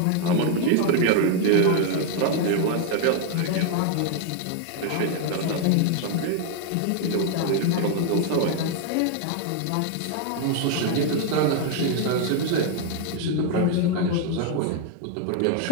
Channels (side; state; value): both; different; correlation 0.00